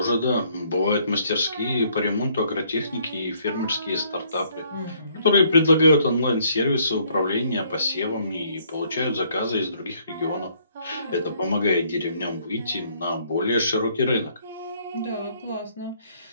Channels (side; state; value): both; inverted; correlation -0.65